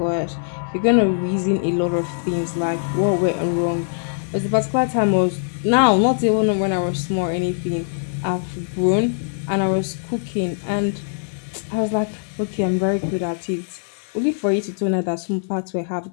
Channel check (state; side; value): silent; right; digital silence